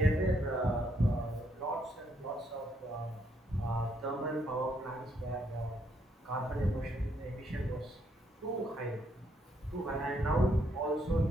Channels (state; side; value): normal; both; correlation 0.73